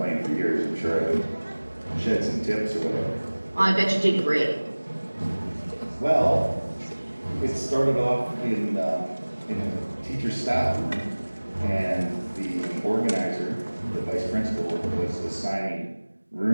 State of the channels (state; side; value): inverted; both; correlation -1.00